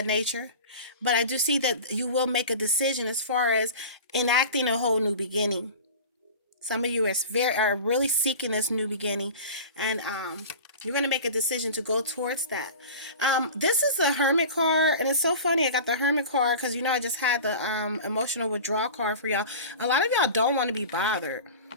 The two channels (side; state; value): both; inverted; correlation -0.35